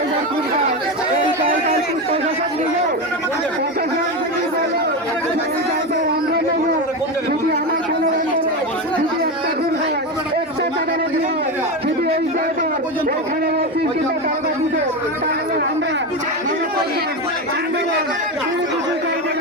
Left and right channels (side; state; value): both; normal; correlation 0.17